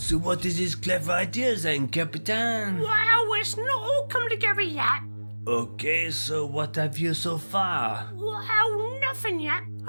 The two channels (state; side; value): inverted; both; correlation -1.00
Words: what is his clever idea then, Captain? Well, it's not all come together yet. Okay, so what have you so far? Well, nothing yet.